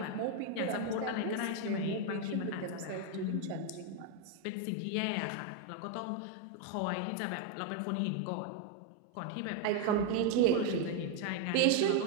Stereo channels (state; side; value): different; both; correlation 0.01